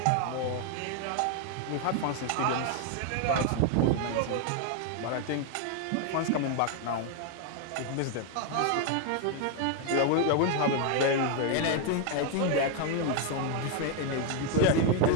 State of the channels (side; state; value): both; different; correlation 0.01